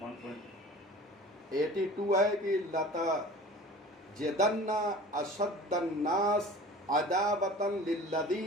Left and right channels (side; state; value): both; normal; correlation 0.41